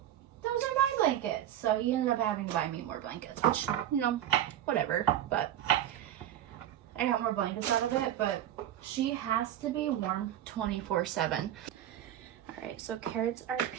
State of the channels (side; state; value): left; quieter; 11.7 dB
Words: those are my blankets. So he ended up having to buy me more blankets, which, you know, whatever. But I got more blankets out of it. But she has to be warm 24/7. All right, so carrots are